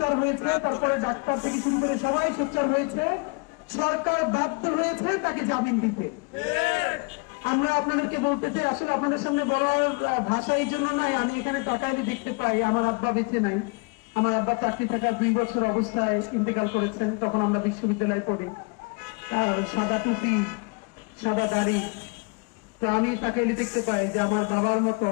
হয়েছে, তারপরে ডাক্তার থেকে শুরু করে সবাই সোচ্চার হয়েছে, সরকার বাধ্য হয়েছে তাকে জামিন দিতে। আমরা আপনাদেরকে বলতে চাই, আসলে আপনাদের সামনে বলার ভাষা এই জন্য নাই, আমি এখানে তাকাইলে দেখতে পাই আমার আব্বা বেঁচে নাই। আমার আব্বা চাকরি থাকার 2 বছর অবস্থায় ইন্তেকাল করেছেন, তখন আমরা বিশ্ববিদ্যালয়ে পড়ি। আর সাদা টুপি, সাদা দাড়ি। তো আমি তাকাইলে দেখতে পাই যে আমার বাবার মতো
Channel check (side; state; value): right; quieter; 30.4 dB